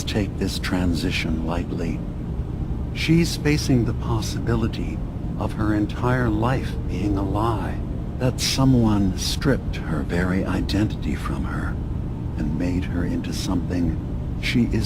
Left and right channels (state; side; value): identical; both; correlation 1.00